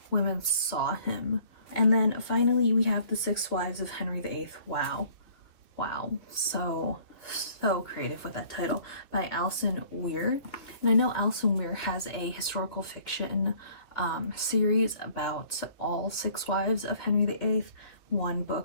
women saw him. And then finally we have The 6 Wives of Henry VIII. Wow, so creative with that title, by Alison Weir. And I know Alison Weir has a historical fiction series about all 6 wives of Henry VIII, 1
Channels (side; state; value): right; late; 2.0 ms